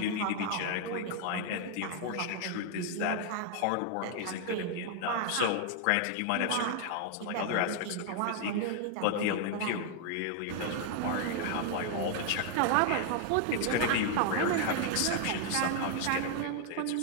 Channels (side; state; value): both; different; correlation 0.00